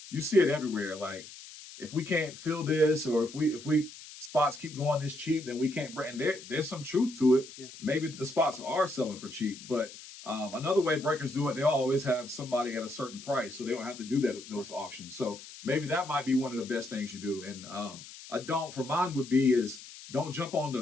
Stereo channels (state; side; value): noise; left; hiss, 16 dB below the sound